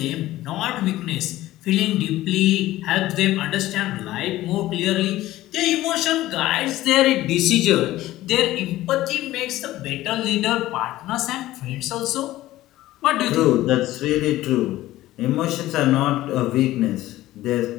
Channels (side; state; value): right; quieter; 15.8 dB